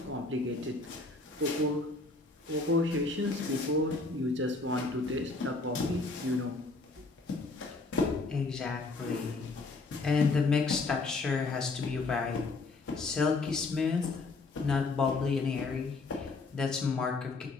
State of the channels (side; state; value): right; quieter; 3.6 dB